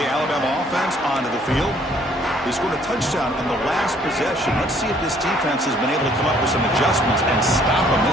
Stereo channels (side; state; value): both; normal; correlation 0.62